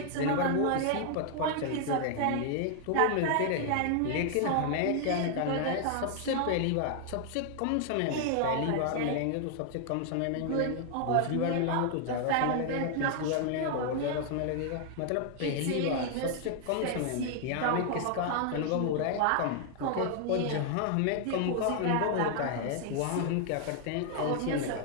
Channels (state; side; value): different; both; correlation 0.00